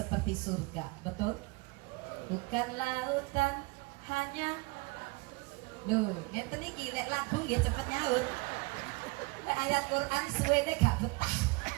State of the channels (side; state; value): left; quieter; 25.9 dB